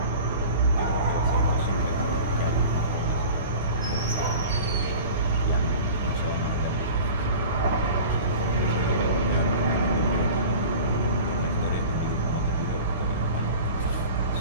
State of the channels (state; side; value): inverted; both; correlation -0.38